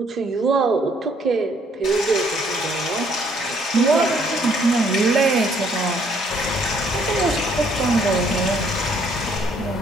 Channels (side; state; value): both; normal; correlation 0.65